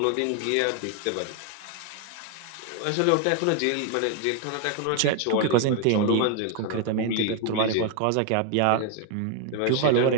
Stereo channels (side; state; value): both; different; correlation 0.01